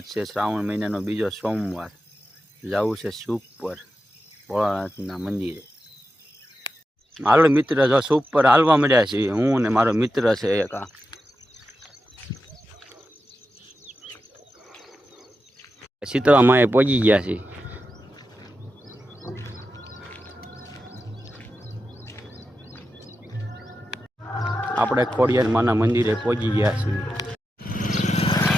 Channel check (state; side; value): normal; both; correlation 0.90